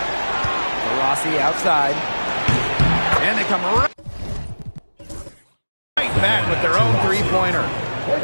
Rossi outside. And they come right back with their own 3-pointer.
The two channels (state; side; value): inverted; both; correlation -1.00